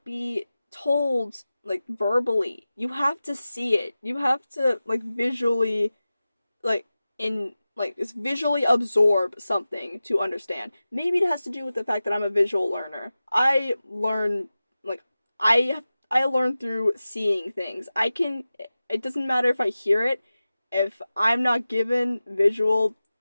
be told like verbally. You have to see it. You have to like visually like in like just visually absorb something to understand. Maybe it has to do with the fact that I'm a visual learner. Like I I learn through seeing things. I can it doesn't matter if I hear it. If I'm not given visual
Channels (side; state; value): both; inverted; correlation -0.95